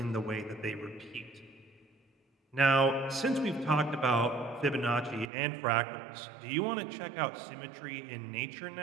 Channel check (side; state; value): left; drops out; at 5.3 s